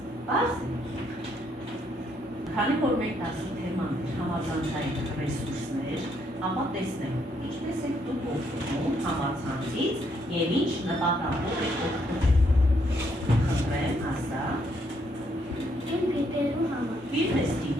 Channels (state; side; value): normal; both; correlation 0.72